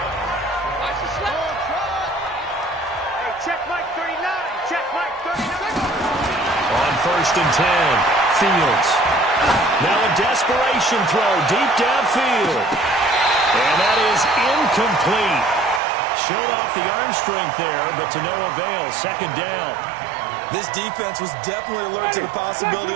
Check Mike 39. Check Mike 39. On 1st and 10, Fields. Now a desperation throw deep downfield. And that is incomplete. Showed off the arm strength there, but to no avail. 2nd down. This defense was definitely alert to the possibility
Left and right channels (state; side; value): drops out; left; at 15.8 s